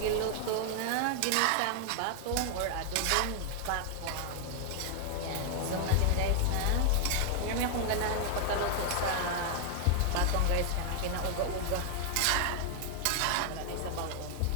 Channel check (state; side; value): different; both; correlation 0.00